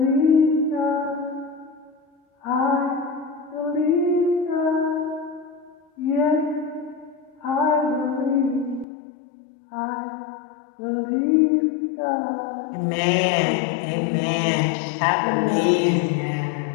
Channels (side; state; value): right; drops out; at 8.8 s